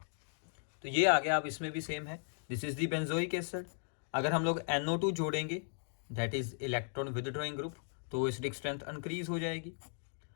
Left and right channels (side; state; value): right; silent; digital silence